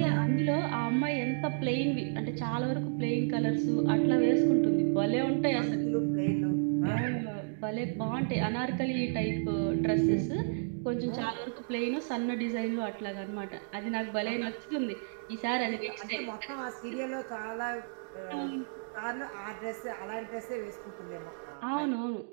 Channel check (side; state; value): left; silent; digital silence